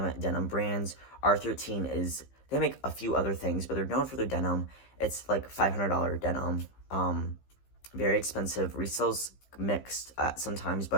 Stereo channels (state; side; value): late; right; 15 ms